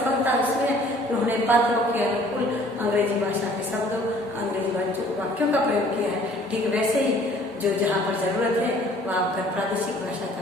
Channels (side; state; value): both; normal; correlation 0.54